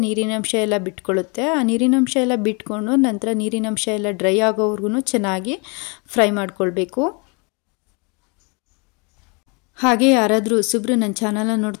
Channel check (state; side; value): quieter; right; 32.1 dB